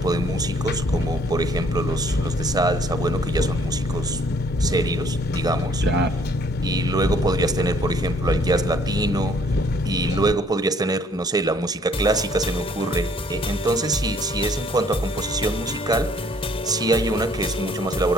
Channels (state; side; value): normal; both; correlation 0.62